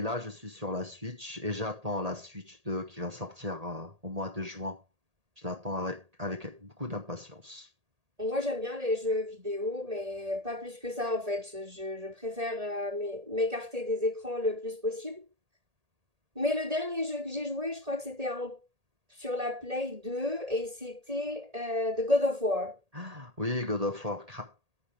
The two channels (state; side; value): late; left; 1.8 ms